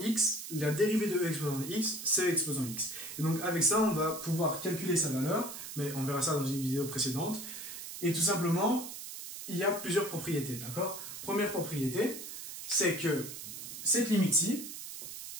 la dérivée de E exposant x, c'est E exposant x. Et donc avec ça, on va pouvoir calculer sa valeur, mais on verra ça dans une vidéo précédente. Et tout simplement, il y a plusieurs propriétés, d'accord? Première propriété, c'est que cette limite-ci,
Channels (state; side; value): noise; right; hiss, 9 dB below the sound